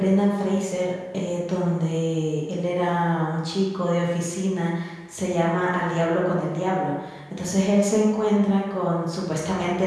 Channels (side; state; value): both; identical; correlation 1.00